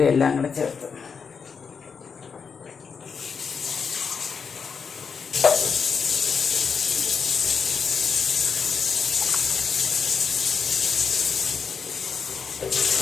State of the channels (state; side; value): quieter; right; 5.9 dB